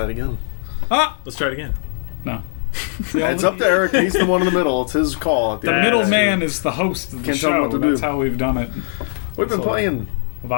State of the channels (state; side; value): silent; right; 66 dB below the other